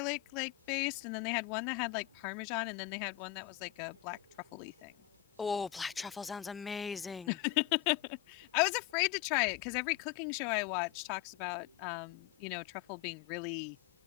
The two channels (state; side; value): quieter; right; 15.8 dB